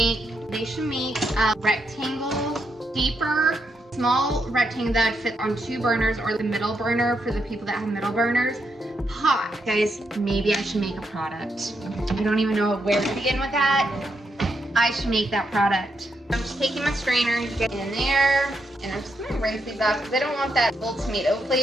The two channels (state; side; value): normal; both; correlation 0.80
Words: They should make a rectangle, deeper, small rectangle that would fit on 2 burners, or the middle burner for the people that have middle burners. Hot. Guys, maybe I should make a product. I don't even know where to begin with that. I should make that product. I'm just taking my strainer to get in there, and I'm just gonna rinse these off because I don't want that full tomato